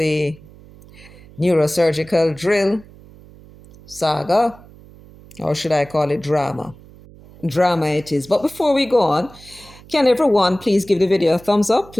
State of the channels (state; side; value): noise; right; hum, 22 dB below the sound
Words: neurosurgical drill saga, or should I call it drama? Drama it is. But before we go on, can everyone please give the video a thumbs up?